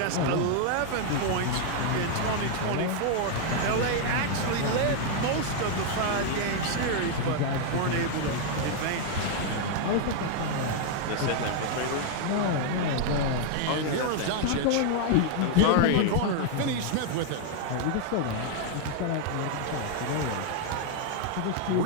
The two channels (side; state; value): both; different; correlation 0.00